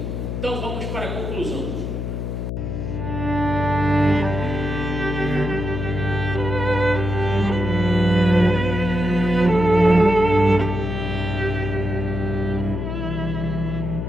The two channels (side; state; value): left; noise; hum, 3 dB below the sound